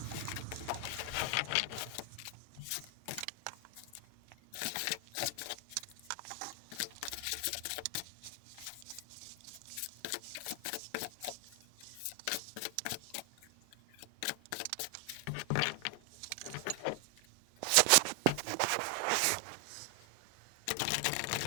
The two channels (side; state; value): both; different; correlation 0.00